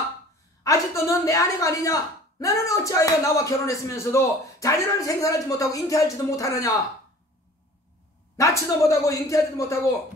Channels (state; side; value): normal; both; correlation 0.47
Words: 아직도 너는 내 아내가 아니냐? 나는 어찌하여 나와 결혼했으면서도 자녀를 생산하지 못하고 잉태하지도 못하느냐? 낳지도 못하고 잉태하지도 못하고